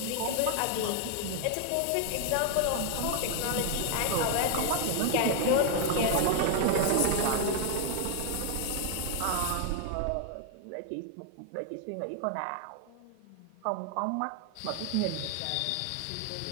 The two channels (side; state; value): both; different; correlation 0.00